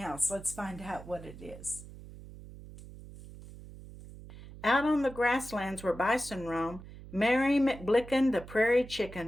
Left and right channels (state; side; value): noise; right; hum, 16 dB below the sound